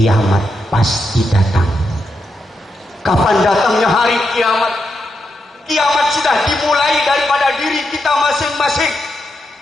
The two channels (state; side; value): normal; both; correlation 0.84